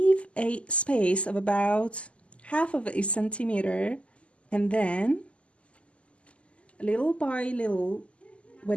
a space of about half of a centimeter, and then little by little,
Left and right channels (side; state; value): right; late; 0.058 ms